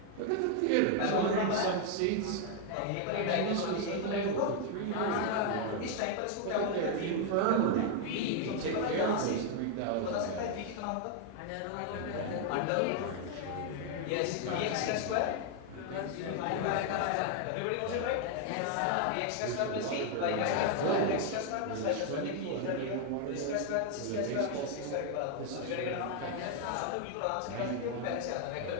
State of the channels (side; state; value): both; different; correlation 0.00